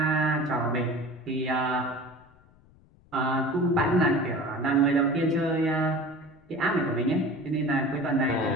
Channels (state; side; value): noise; left; rumble, 29 dB below the sound